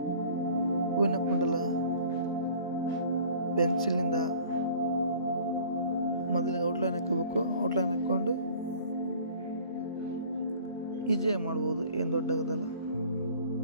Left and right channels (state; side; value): inverted; both; correlation -0.48